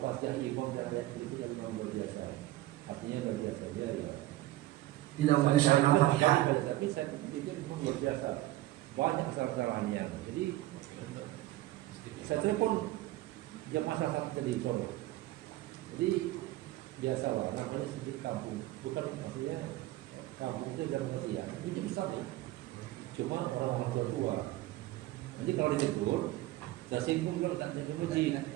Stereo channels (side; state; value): left; quieter; 16.5 dB